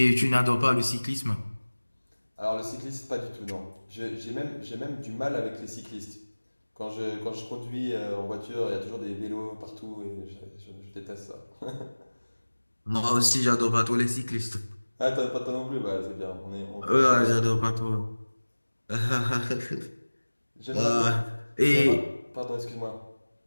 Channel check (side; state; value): both; inverted; correlation -1.00